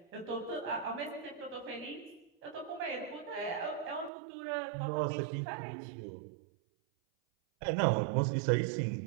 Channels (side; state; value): left; drops out; at 4.1 s